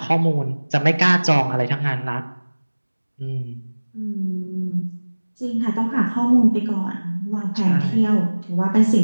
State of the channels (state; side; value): inverted; both; correlation -1.00